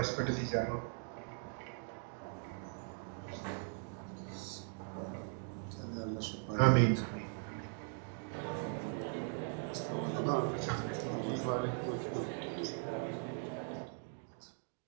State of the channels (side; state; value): left; silent; 51 dB below the other